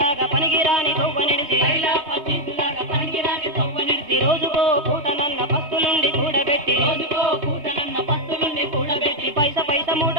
పనికిరాని కొవ్వ నిడిచి పైలా పచ్చిలాగా పనికిరాని తవ్వ నడిచి రోజుకో పూటనన్న పస్తులుండి కూడబెట్టి రోజుకో పూటనన్న పత్తు నుండి కూడబెట్టి పైస పైస మూట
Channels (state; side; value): late; left; 2.9 ms